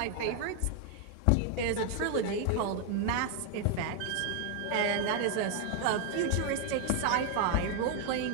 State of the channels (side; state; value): both; different; correlation 0.01